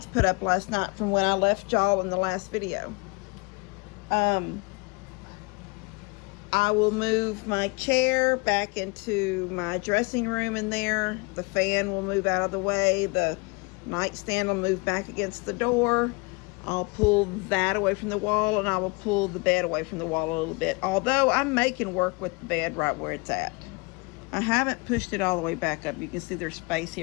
put up last night from when I left y'all in the last video. I will move my chair back into my dressing room in there. The fan will move out of the way. The nightstand will move back against the door. I'll pull that away from the wall, and I will pull the bed away from the wall a little bit. Although I'm making work with the bed right where it's at. I haven't pushed it all the way back up. You can see there's space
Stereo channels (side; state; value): right; quieter; 29.1 dB